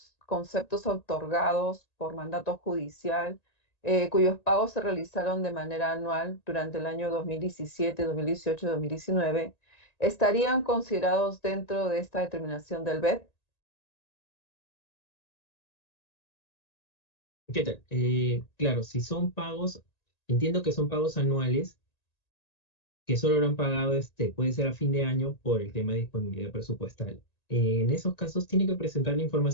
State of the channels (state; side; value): late; right; 1.9 ms